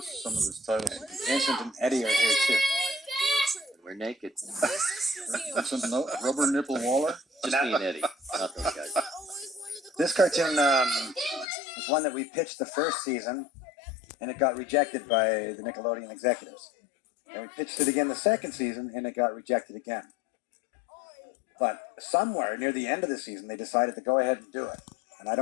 some of this titles. Vincent and Eddie are here too. And we're naked. Vincent Rubber Nipple Waller. Just me and Eddie, not those guys. This cartoon was one that we pitched the first season, and it got rejected by the Nickelodeon executives. And we pitched it again the second season, and it got rejected again. But somewhere near the end of the season, they decided to go ahead and do it. And I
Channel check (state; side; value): drops out; right; at 11.5 s